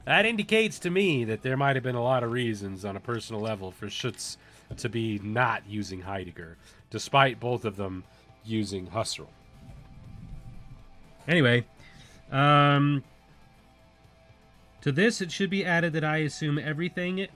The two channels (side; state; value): both; identical; correlation 1.00